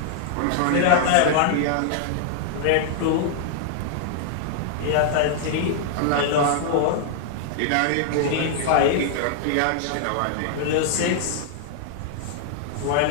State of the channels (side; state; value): both; different; correlation -0.01